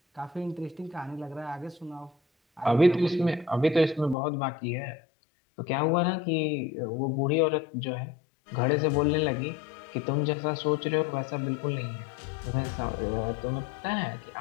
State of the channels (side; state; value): right; drops out; at 4.2 s